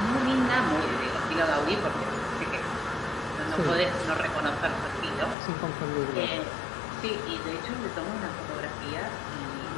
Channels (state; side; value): drops out; right; at 5.4 s